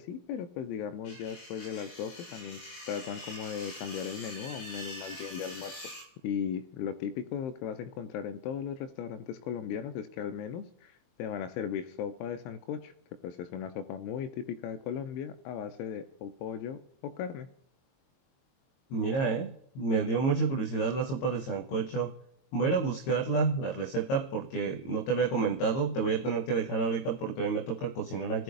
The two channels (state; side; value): late; right; 22 ms